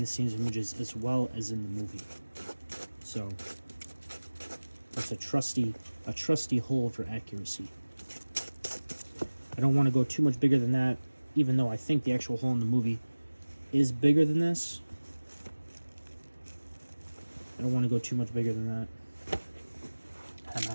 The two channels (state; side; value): inverted; both; correlation -1.00